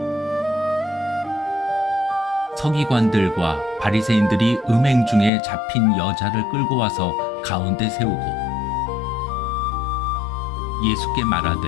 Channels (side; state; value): right; drops out; at 5.3 s